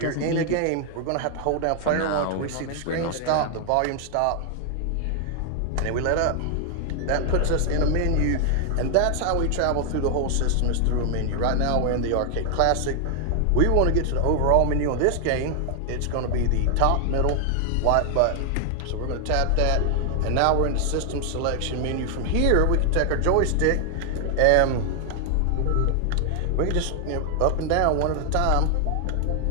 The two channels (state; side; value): different; both; correlation 0.00